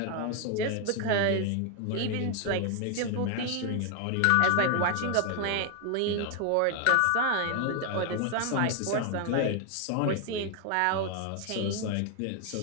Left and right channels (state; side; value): different; both; correlation 0.00